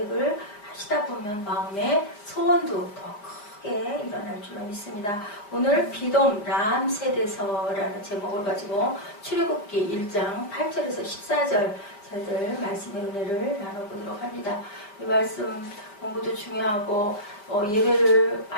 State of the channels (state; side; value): late; right; 5.0 ms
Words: 하시다 보면 마음의 소원도 더 크게 일어날 줄로 믿습니다. 오늘 비돔 람세대서라는 제목을 가지고 출애굽기 1장 8절에서 14절 저희들 말씀의 은혜를 나눠보도록 합니다. 이 말씀 공부도 중요하고 예배를